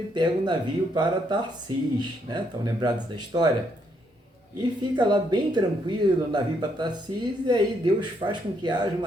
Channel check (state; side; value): normal; both; correlation 0.74